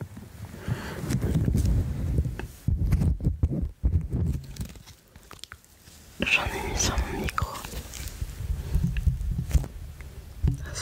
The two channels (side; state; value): both; identical; correlation 1.00